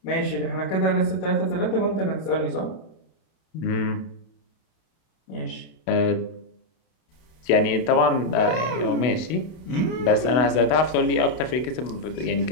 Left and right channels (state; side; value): late; right; 32 ms